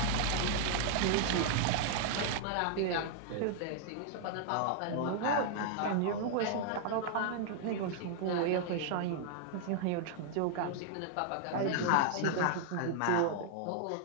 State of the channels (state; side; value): different; both; correlation 0.00